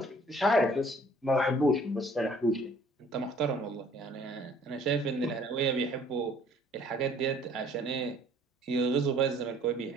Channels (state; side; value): normal; both; correlation 0.56